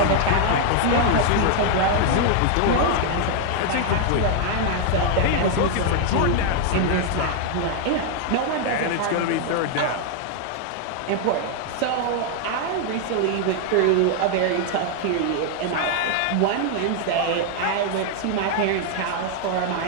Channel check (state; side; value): different; both; correlation 0.00